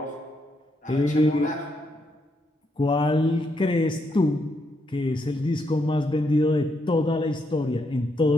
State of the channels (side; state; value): both; normal; correlation 0.78